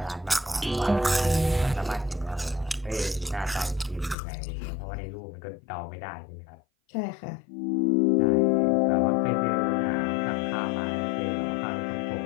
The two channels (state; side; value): drops out; right; at 4.2 s